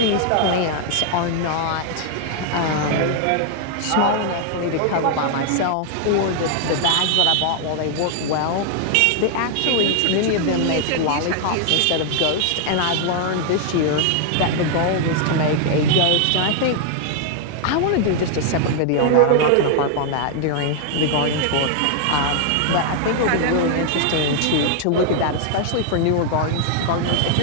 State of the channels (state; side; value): different; both; correlation 0.00